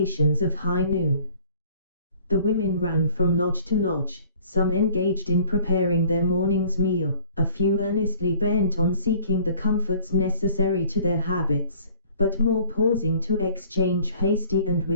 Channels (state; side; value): inverted; both; correlation -0.54